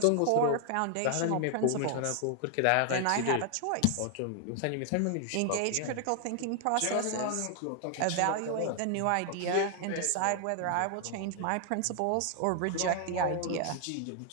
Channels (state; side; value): different; both; correlation 0.00